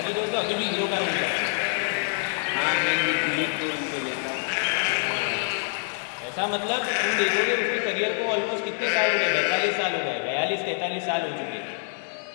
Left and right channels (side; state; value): right; silent; 60 dB below the other